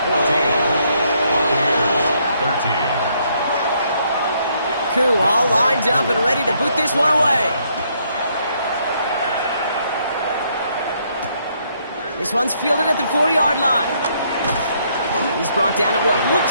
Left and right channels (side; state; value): both; inverted; correlation -0.71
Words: 14, Buccaneers 13. Koo all lined up and ready to boot this one away. This one's fielded at the 4-yard line. He's brought down at what